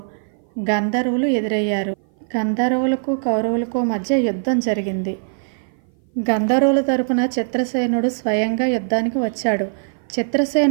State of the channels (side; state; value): left; silent; 57 dB below the other